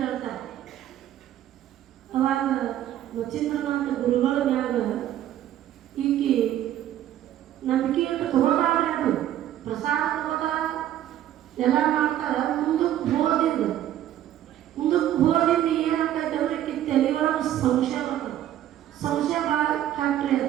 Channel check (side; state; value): left; quieter; 12.0 dB